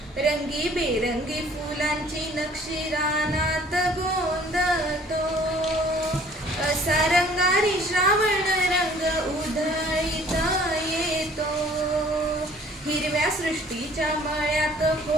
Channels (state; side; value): normal; both; correlation 0.54